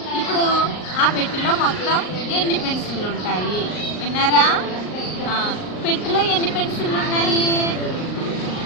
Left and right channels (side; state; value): right; late; 38 ms